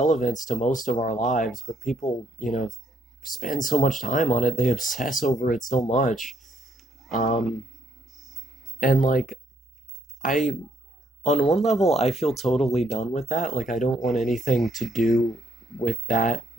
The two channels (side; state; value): both; normal; correlation 0.72